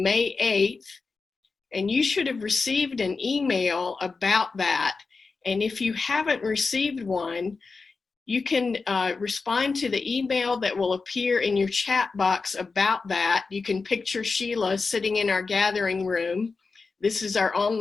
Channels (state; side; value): quieter; right; 4.4 dB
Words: May 8th. And you should have received an email about that. And if you haven't received one, you can respond to the email that will appear in your chat box about that. You can picture Sheila sitting in our gathering room. This is our